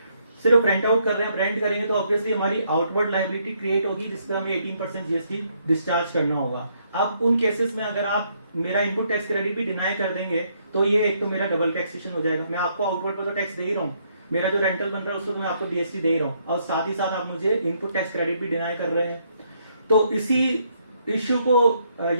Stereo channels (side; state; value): both; inverted; correlation -0.72